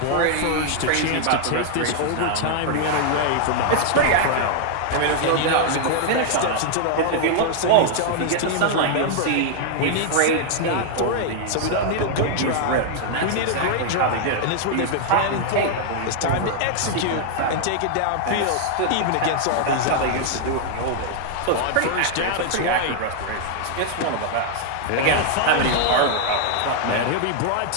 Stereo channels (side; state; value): both; different; correlation 0.00